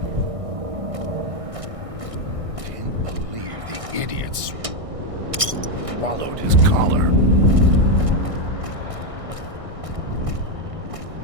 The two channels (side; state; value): left; late; 1.6 ms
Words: Idiots swallowed his collar.